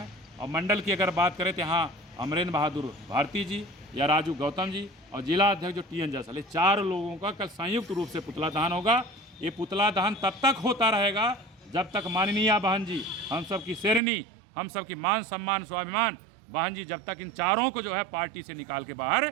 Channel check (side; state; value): left; drops out; at 14.0 s